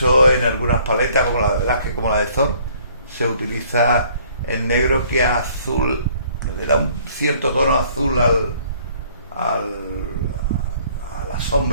en algunas paletas, como la de Velázquez, como la de Thor, se utiliza el negro que azul, le da un cierto tono azul a las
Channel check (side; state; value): both; inverted; correlation -0.59